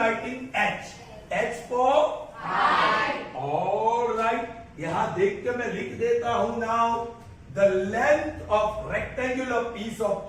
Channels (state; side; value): identical; both; correlation 1.00